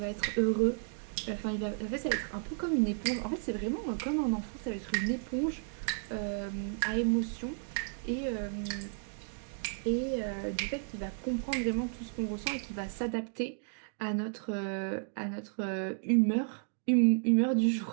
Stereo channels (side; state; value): left; silent; digital silence